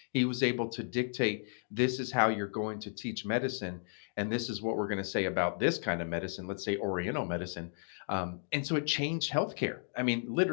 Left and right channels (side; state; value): right; silent; digital silence